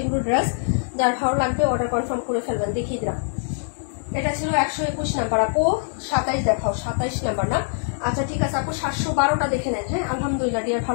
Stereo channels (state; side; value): silent; right; digital silence